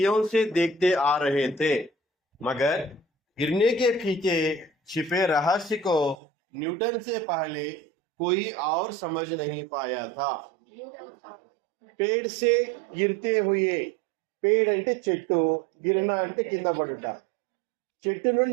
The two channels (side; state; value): left; drops out; at 6.2 s